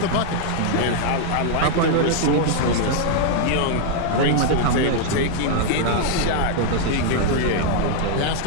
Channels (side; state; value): both; different; correlation -0.01